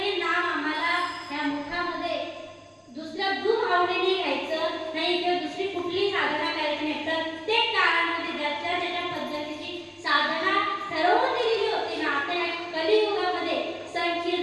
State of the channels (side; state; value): both; identical; correlation 1.00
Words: नाम आम्हाला ह्या मुखामध्ये दुसरं दूध आवडीने घ्यायचं नाही किंवा दुसरी कुठली साधना करायची नाही. प्रत्येक काळामध्ये ज्याच्या ज्याच्या पद्धतीची साधना ठरवून दिलेली होती ना. आता या कलियुगामध्ये